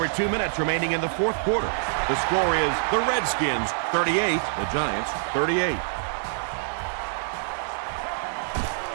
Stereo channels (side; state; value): left; silent; digital silence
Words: 2 minutes remaining in the fourth quarter, the score is the Redskins 38, the Giants 38.